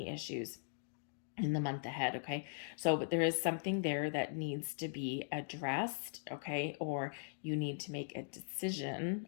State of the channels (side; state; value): right; silent; digital silence